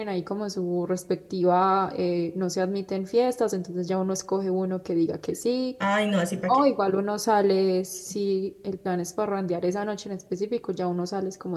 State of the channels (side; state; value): both; identical; correlation 1.00